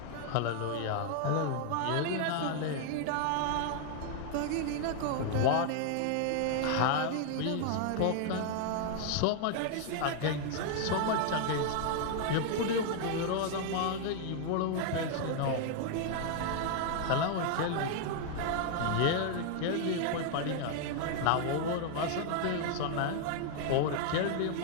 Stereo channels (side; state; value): both; different; correlation 0.00